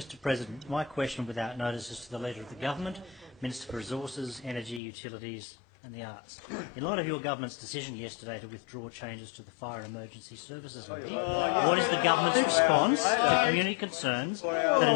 President, my question without notice is to the Leader of the Government, Minister for Resources, Energy, Utilities and the Arts. In light of your Government's decision yesterday to withdraw changes to the Fire and Emergency Services Levy, what is the Government's response to community concerns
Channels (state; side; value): drops out; right; at 4.8 s